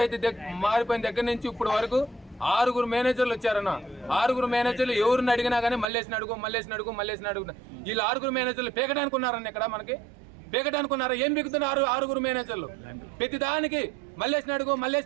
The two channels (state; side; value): drops out; left; at 5.9 s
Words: మారిపోయిన దగ్గర నుంచి ఇప్పుడు వరకు 6 మేనేజర్లు వచ్చారన్న. 6 మేనేజర్లు ఎవరిని అడిగినా కానీ మల్లేసిన అడుగు. వీళ్ళు 6 మేనేజర్లు పీకడానికి ఉన్నారన్న. ఇక్కడ మనకి పీకడానికి ఉన్నారా? ఏం పీకుతున్నారు 6 మేనేజర్లు? ప్రతి దానికి మల్లేసిన అడుగు.